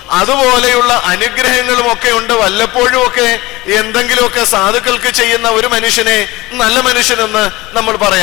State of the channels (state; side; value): quieter; right; 20.3 dB